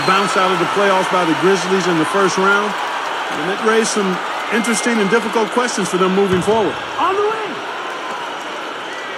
bounced out of the playoffs by the Grizzlies in the first round. And it raised some interesting and difficult questions for them moving forward. On the way.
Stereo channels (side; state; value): both; identical; correlation 1.00